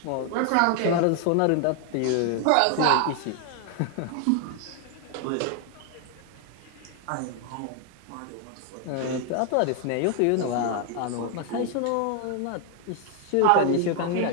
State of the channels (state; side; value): different; both; correlation 0.00